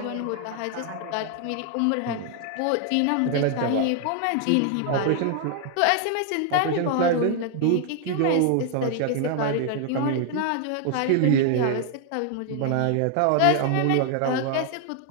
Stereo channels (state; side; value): different; both; correlation 0.00